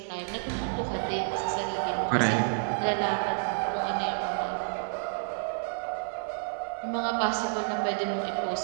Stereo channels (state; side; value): silent; left; 57 dB below the other